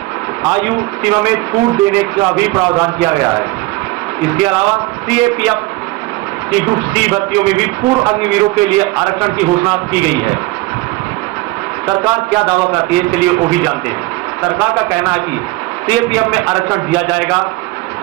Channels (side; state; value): left; quieter; 20.6 dB